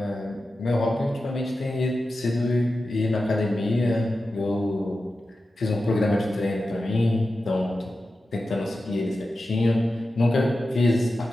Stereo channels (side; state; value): both; normal; correlation 0.92